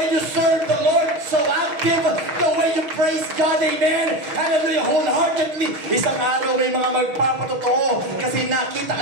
you serve the Lord so active, the way you praise God, amen, hallelujah, wholeheartedly. Isang araw may mga magpapatotoo kasi nakita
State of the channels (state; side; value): late; left; 6.3 ms